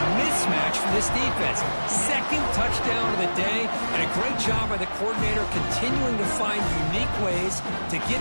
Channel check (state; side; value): inverted; both; correlation -1.00